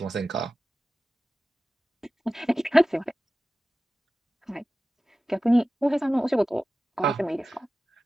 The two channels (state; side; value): normal; both; correlation 0.95